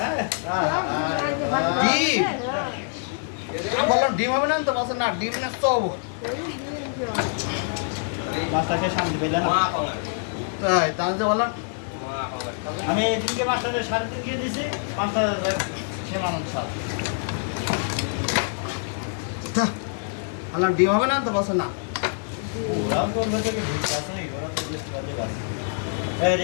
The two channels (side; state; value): right; silent; 55 dB below the other